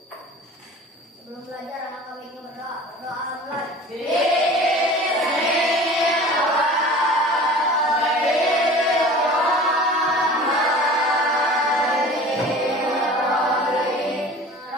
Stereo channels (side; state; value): both; normal; correlation 0.41